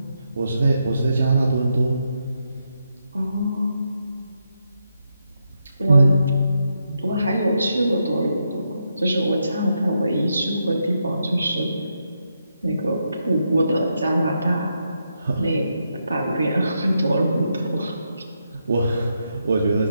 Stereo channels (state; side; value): inverted; both; correlation -0.82